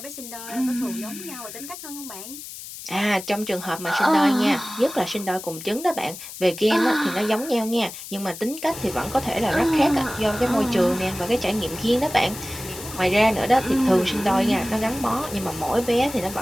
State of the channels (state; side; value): noise; left; hiss, 12 dB below the sound